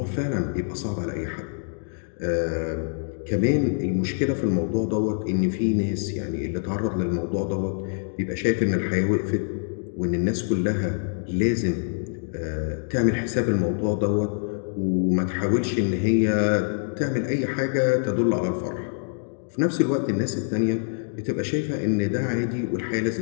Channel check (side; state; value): right; silent; digital silence